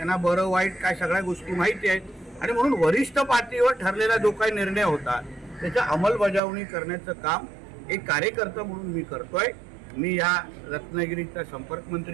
बरं वाईट काय सगळ्या गोष्टी माहिती आहेत आणि म्हणून वरिष्ठ पातळीवर ठरलेला जो काही निर्णय होता त्याच्या अंमलबजावणी करण्याचं काम एक कार्यकर्ता म्हणून मी करतोय. मी या रत्नागिरीचा संपर्क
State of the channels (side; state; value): left; drops out; at 6.4 s